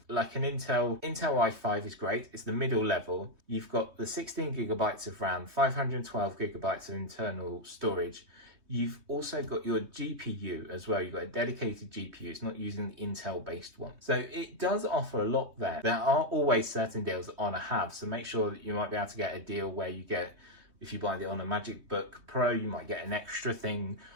like an Intel i5 is great, it's the middle level. You've got the 16 gigabytes of RAM, 512 gigabytes of internal storage. You've also got your GPU as well. You've got a dedicated GPU. It's not using the Intel based one. So it does offer a lot there. There are always certain deals that HONOR have. So make sure that you might be able to get a deal where you get, if you buy the HONOR MagicBook Pro, you might get an extra thing,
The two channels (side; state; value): left; late; 3.2 ms